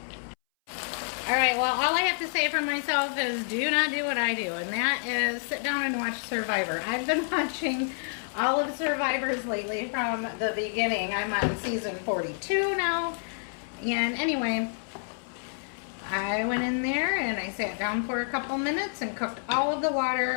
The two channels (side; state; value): right; silent; 59 dB below the other